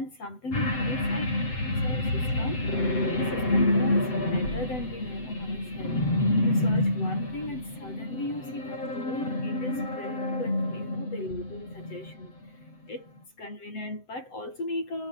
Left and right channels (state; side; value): late; right; 7.9 ms